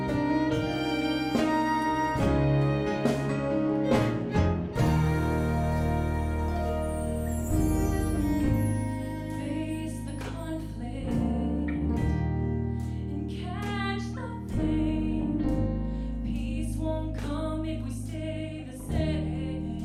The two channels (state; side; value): identical; both; correlation 1.00